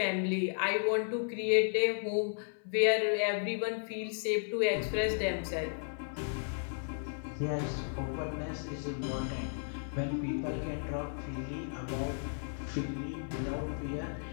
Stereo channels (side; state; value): right; silent; 55 dB below the other